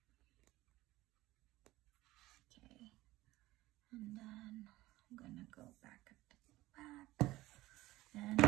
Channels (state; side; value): quieter; left; 17.7 dB